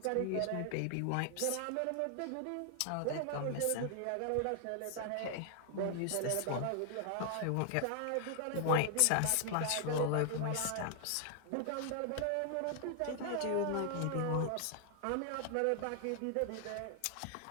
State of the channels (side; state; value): both; different; correlation 0.00